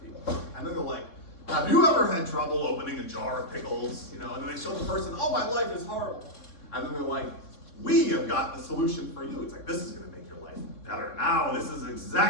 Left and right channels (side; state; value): right; late; 3.6 ms